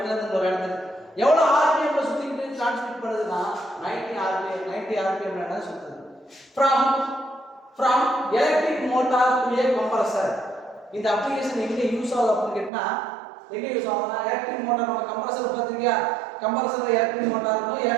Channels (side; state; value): left; drops out; at 12.7 s